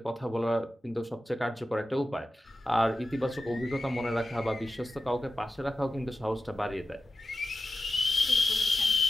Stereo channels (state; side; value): normal; both; correlation 0.92